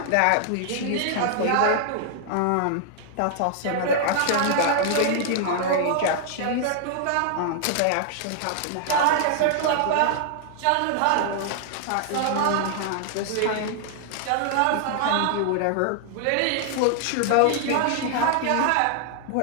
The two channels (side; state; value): both; different; correlation -0.01